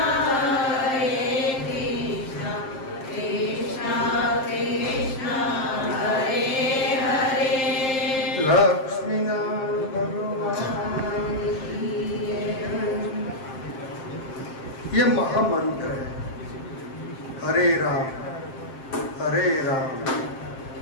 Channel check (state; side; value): late; right; 7.6 ms